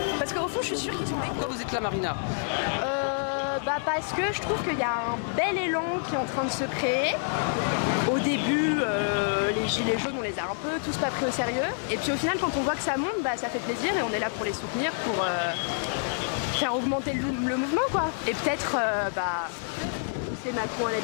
parce qu'au fond je suis sûre qu'ils sont là. Pourquoi vous êtes là, Marina? Bah parce que je trouve qu'il y a un bel élan qui est en train de se créer. Au début, les gilets jaunes, on les a un peu tous pas pris au sérieux. Et puis au final, quand on voit que ça monte, bah ça fait plaisir et on est là pour les soutenir, pour faire augmenter le mouvement, quoi. Et peut-être, pousser Macron à la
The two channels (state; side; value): silent; right; digital silence